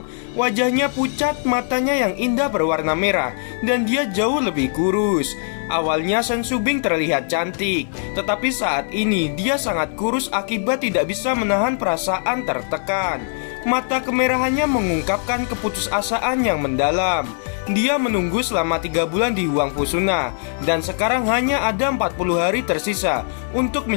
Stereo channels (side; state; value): right; silent; 65 dB below the other